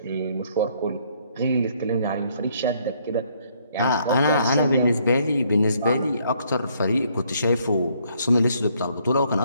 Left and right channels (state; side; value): inverted; both; correlation -0.67